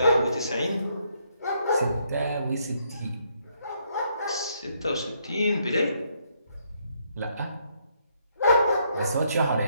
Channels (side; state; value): both; inverted; correlation -0.72